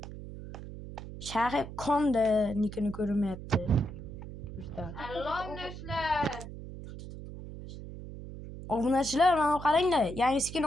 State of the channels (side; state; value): right; noise; hum, 11 dB below the sound